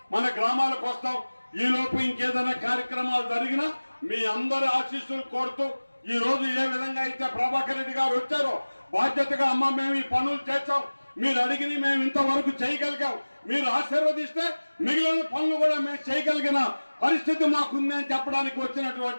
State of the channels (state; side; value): inverted; both; correlation -1.00